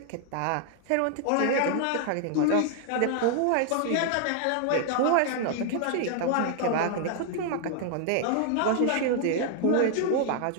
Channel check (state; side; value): different; both; correlation 0.00